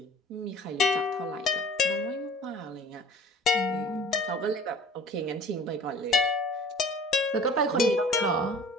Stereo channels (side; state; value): both; normal; correlation 0.46